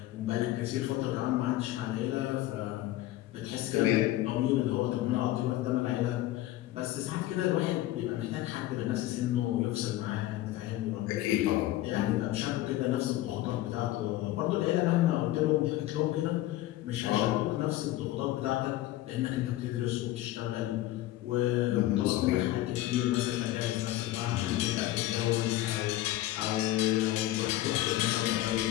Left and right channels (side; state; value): right; quieter; 15.4 dB